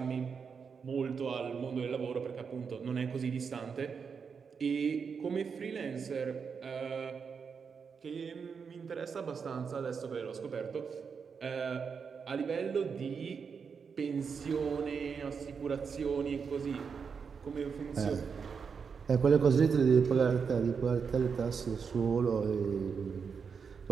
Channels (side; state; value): left; quieter; 6.0 dB